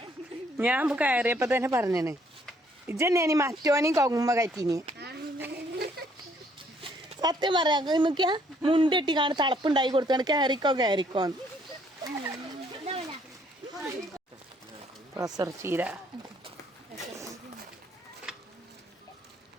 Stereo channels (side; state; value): both; normal; correlation 0.66